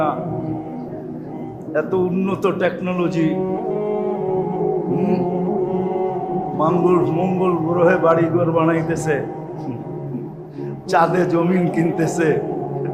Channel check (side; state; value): both; identical; correlation 1.00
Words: না। এত উন্নত টেকনোলজি, মঙ্গল গ্রহে বাড়িঘর বানাইতেছে, চাঁদে জমিন কিনতেছে,